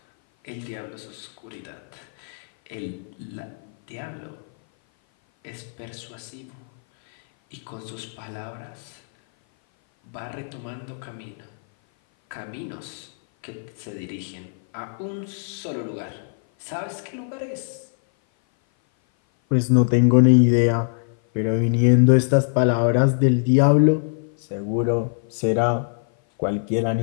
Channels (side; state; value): right; silent; 56 dB below the other